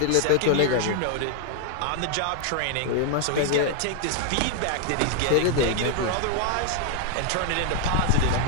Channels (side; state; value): both; different; correlation 0.00